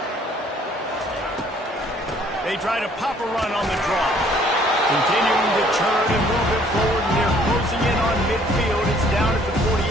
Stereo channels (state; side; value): normal; both; correlation 0.60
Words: They try to pop a run on the draw. Continuing to turn and move it forward, and they're closing in on midfield. It's down at the 48.